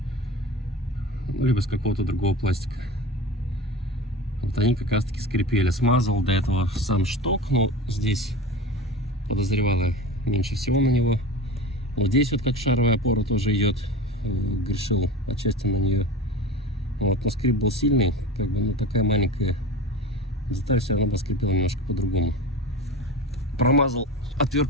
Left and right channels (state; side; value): normal; both; correlation 0.32